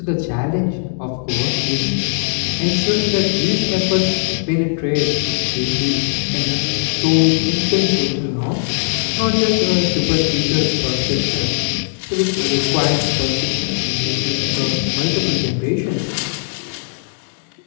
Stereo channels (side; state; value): right; silent; digital silence